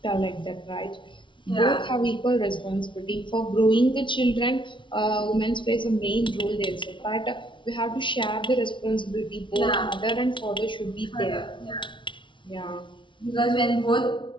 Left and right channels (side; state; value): right; late; 0.24 ms